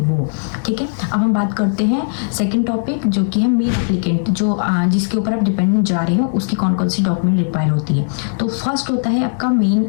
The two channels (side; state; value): right; silent; digital silence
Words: वो, ठीक है। अब हम बात करते हैं सेकंड टॉपिक, जो कि है मेन एप्लीकेंट, जो जिसके ऊपर आप डिपेंडेंट जा रहे हो उसकी कौन कौन सी डॉक्यूमेंट रिक्वायर होती है। तो फर्स्ट होता है आपका मेन